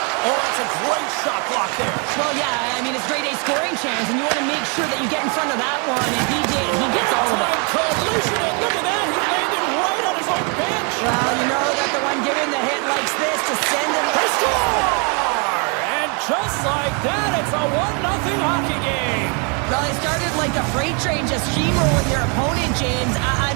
Oh, that's a great shot block there. Well, yeah, I mean, it's grade A scoring chance, and you want to make sure that you get in front of that one, and he did. He gets all of it. Time collision, and look at that. He landed right on his own bench. Well, you know that the one giving the hit likes this to send him. They score! And just like that, it's a 1-0 hockey game. Well, they started like a freight train just steamrolling their opponent, James. I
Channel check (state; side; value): quieter; left; 35.3 dB